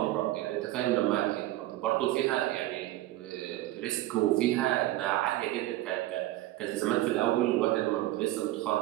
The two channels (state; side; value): quieter; left; 15.8 dB